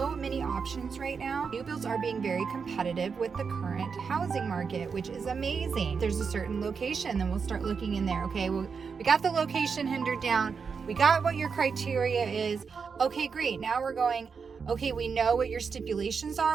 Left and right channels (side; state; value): left; quieter; 5.7 dB